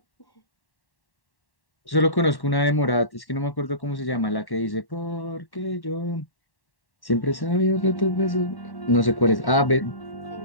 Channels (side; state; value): right; late; 1.1 ms